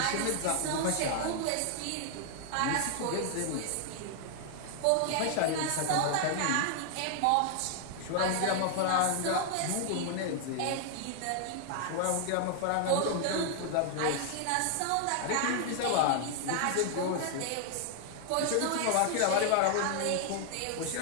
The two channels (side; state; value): both; different; correlation 0.00